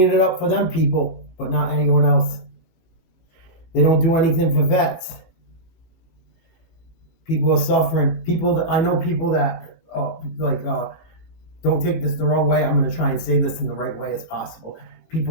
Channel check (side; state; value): right; late; 18 ms